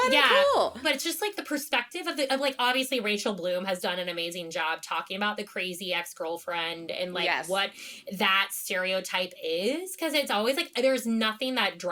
and cool. But it's just, like, the perspective of like, obviously, Rachel Bloom has done an amazing job talking about the crazy ex-girlfriend and, like, what that stereotype is. Because it's always, like, there's nothing that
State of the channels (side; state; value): both; identical; correlation 1.00